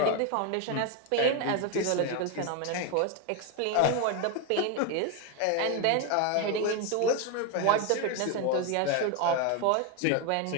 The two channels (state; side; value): different; both; correlation 0.02